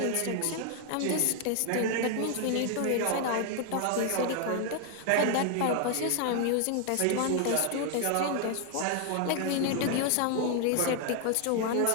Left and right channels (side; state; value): both; different; correlation 0.00